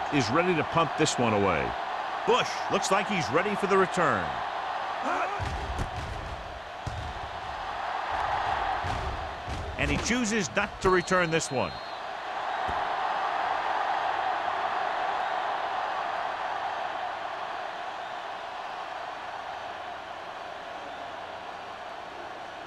is ready to pump this one away. Bush looks like he's ready for the return. And he chooses not to return this one.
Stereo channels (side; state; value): both; identical; correlation 1.00